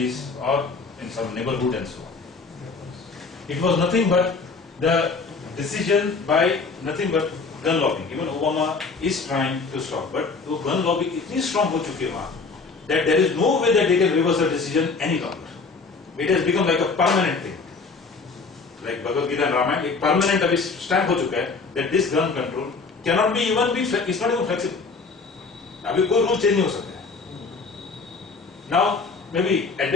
or in some neighborhood and so on. It was nothing but the decision by nothing but gun lobbying. Even Obama is trying to stop, but वो gun lobbying इतनी strong हो चुकी है वहाँ that there is no way that they can reverse the decision any longer. It has become like a permanent thing. Like Bhagavad Gita and Ramayana, एक permanent अभी stamp हो चुका है that this gun control cannot be it's not even flexible. अभी कोई rule change नहीं हो सकता है. Now maybe at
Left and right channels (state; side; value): quieter; right; 4.4 dB